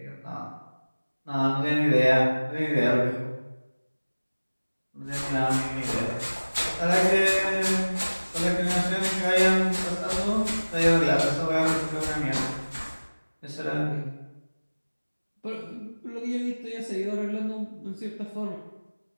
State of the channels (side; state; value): both; inverted; correlation -1.00